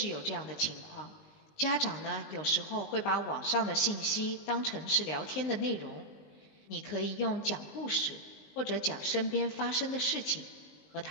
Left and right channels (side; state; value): right; late; 19 ms